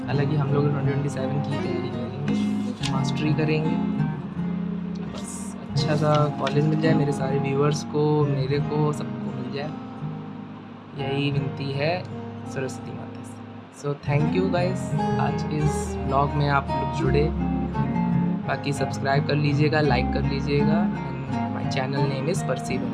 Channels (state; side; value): identical; both; correlation 1.00